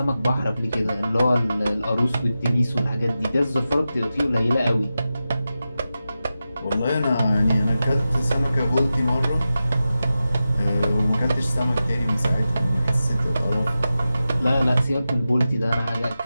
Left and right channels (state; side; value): inverted; both; correlation -0.93